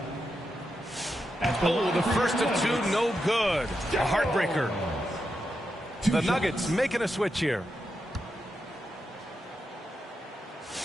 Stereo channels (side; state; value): both; normal; correlation 0.86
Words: Oh, the first of 2, no good. A heartbreaker. The Nuggets making a switch here.